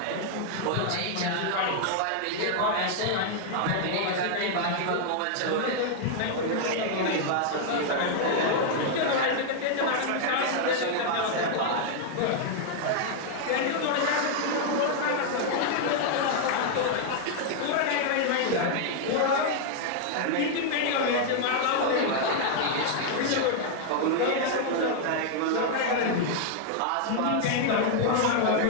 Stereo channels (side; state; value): both; different; correlation 0.00